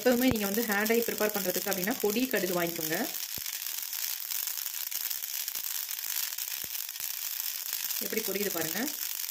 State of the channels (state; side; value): identical; both; correlation 1.00